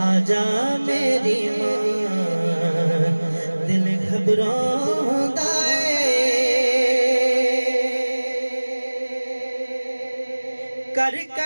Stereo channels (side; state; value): both; inverted; correlation -1.00